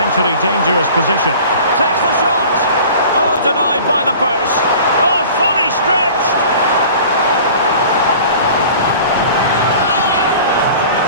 dangerous position. Takes the shot. Oh, denied by the post. Oh, fully stretched.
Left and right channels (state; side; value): inverted; both; correlation -0.43